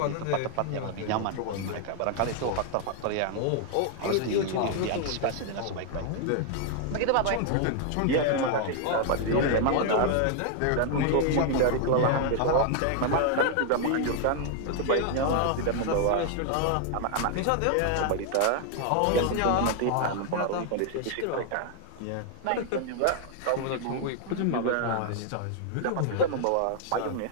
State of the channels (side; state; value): both; different; correlation 0.00